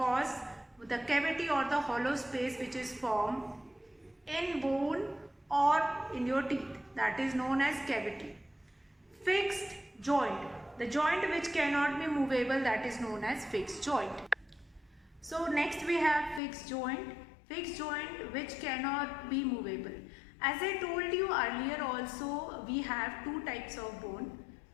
The cavity or the hollow space which is formed in bone or in your teeth, that is known as cavity. Fixed joint, the joint which cannot be movable, that is known as fixed joint. So next we have fixed joint. Fixed joint which cannot be movable. As I told you earlier also, we have two types of bone,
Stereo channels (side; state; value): right; drops out; at 16.4 s